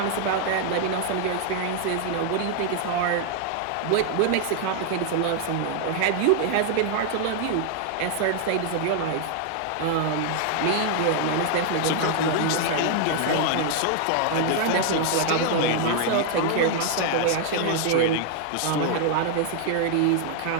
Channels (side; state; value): both; different; correlation 0.00